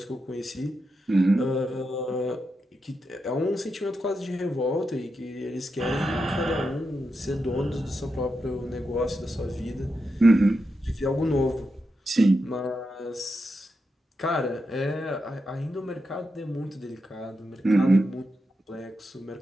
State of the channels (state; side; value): normal; both; correlation 0.87